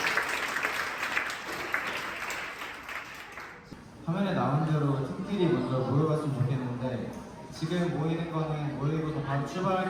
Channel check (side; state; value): both; identical; correlation 1.00